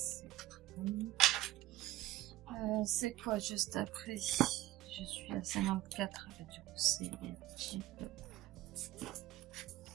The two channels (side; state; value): left; quieter; 15.7 dB